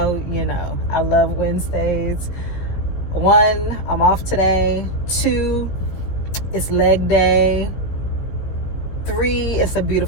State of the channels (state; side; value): late; right; 16 ms